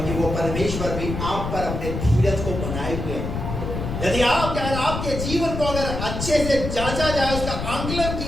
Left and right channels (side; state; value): left; noise; rumble, 4 dB below the sound